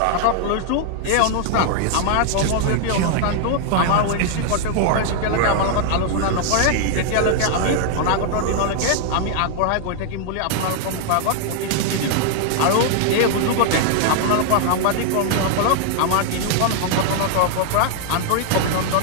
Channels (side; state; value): both; different; correlation 0.00